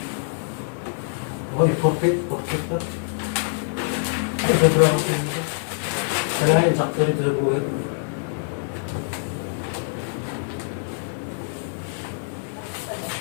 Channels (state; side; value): silent; right; digital silence